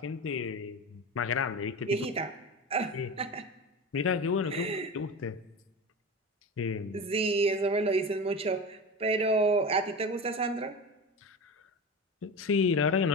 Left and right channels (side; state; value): both; normal; correlation 0.27